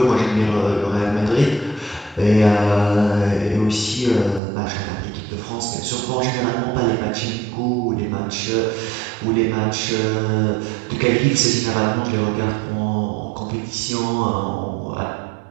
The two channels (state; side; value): drops out; left; at 4.4 s